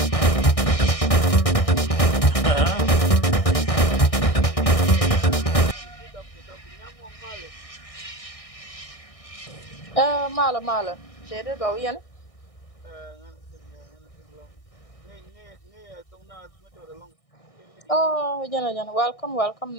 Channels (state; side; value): late; right; 1.6 ms